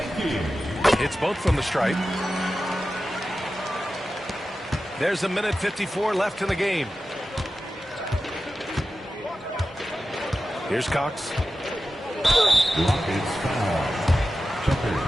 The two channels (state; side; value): normal; both; correlation 0.93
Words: It's both from the stripe. There's a minute 54 left in the game. Here's Cox. Rockets foul.